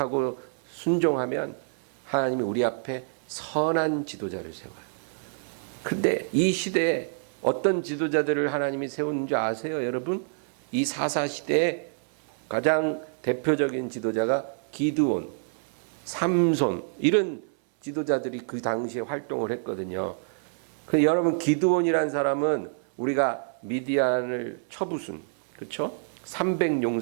순종하면 하나님이 우리 앞에 선한 지도자를 세워요. 근데 이 시대에 어떤 지도자들을 하나님이 세우는 줄 아세요, 여러분? 이 사사 시대에 가장 대표적인 지도자가 기드온, 삼손 이런 지도자들이 그 당시에 활동을 했거든요. 근데 여러분 기드온이라는 사람은 우리가 미디안을 쳐부순, 그렇죠?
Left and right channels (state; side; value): silent; left; 58 dB below the other